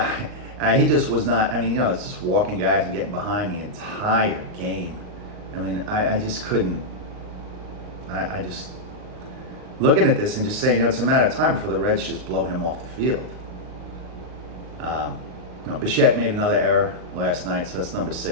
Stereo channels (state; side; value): late; left; 39 ms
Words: just was not. I mean, it's just walking guys and getting behind the entire game. I mean, I just couldn't. I just looking at this and just saying, it's a matter of time before the Reds just blow him off the field. Bichette made another error last night, so that's number